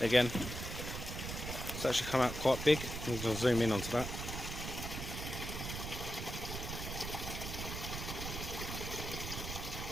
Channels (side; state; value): right; noise; rumble, 5 dB below the sound